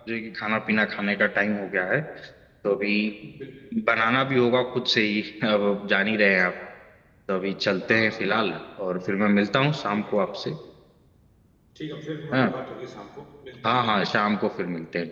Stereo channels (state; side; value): identical; both; correlation 1.00